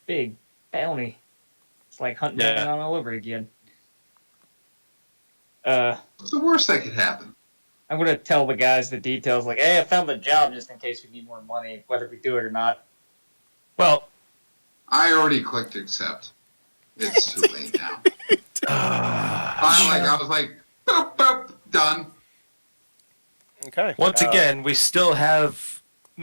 Big bounty. It's like hunting Yeah. down all over again. What's the worst that could happen? I'm gonna tell the guys the details. Like, hey, I found the job just in case we need more money, whether we do it or not. Well, I already clicked accept. It's too late now. I was like, boop, boop, done. Okay. once again, we still have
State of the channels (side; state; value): both; inverted; correlation -1.00